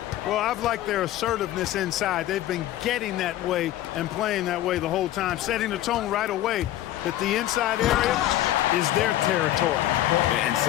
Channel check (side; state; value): right; quieter; 13.8 dB